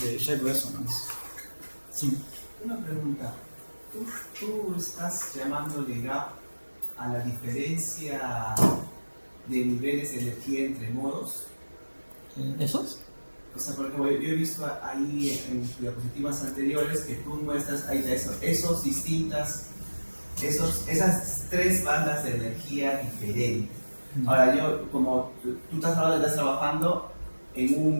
de Shape Resonance. Sí. Una pregunta. ¿Tú estás llamándole gap a la diferencia de niveles de energía entre modos? ¿Esos? O sea, por ejemplo, yo he visto ahí en diapositivas anteriores que tú muestras ahí esas tres bandas de energía diferentes. Ahora, yo, como tú estás trabajando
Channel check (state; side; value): inverted; both; correlation -1.00